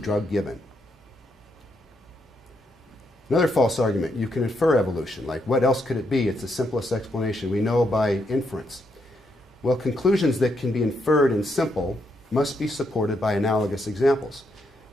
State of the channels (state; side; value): normal; both; correlation 0.79